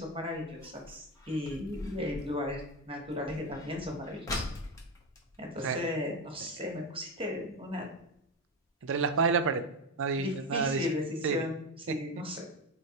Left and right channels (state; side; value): normal; both; correlation 0.14